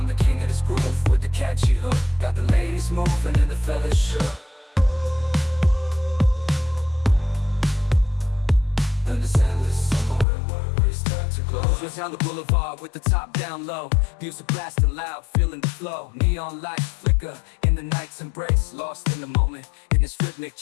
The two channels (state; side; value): drops out; right; at 10.2 s